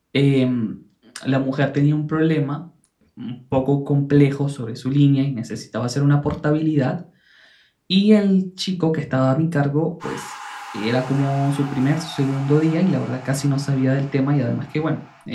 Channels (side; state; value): both; identical; correlation 1.00